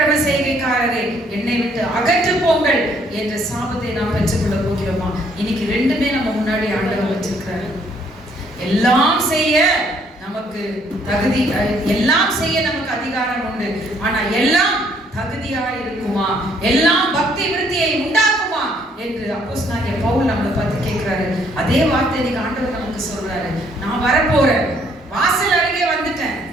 செய்கைக்காரரை என்னை விட்டு அகற்று போங்கள் என்ற சாபத்தை நாம் பெற்றுக்கொள்ள போகிறோமா? இன்னைக்கு ரெண்டுமே நம்ம முன்னாடி ஆண்டவர் வச்சிருக்கிறாரு. எல்லாம் செய்ய நமக்கு தகுதி, எல்லாம் செய்ய நமக்கு அதிகாரம் உண்டு. ஆனா எல்லாம் தகுதியா இருக்குமா? எல்லாம் பக்தி விருத்தியை உண்டாக்குமா என்று அப்போஸ்தலனாகிய பவுல் நம்மளை பார்த்து கேட்கிறாரு. அதே வார்த்தை இன்னைக்கு ஆண்டவர் நமக்கு சொல்றாரு. நான் வரப்போறேன், வாசல் அருகே வந்துட்டேன்,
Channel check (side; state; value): both; normal; correlation 0.66